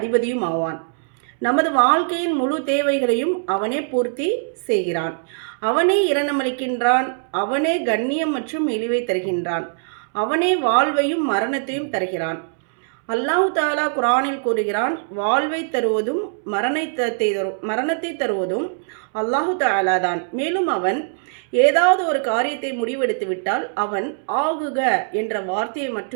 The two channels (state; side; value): silent; left; 65 dB below the other